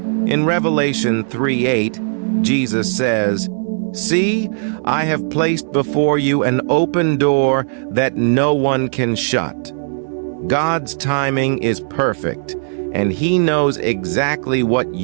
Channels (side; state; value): left; silent; 66 dB below the other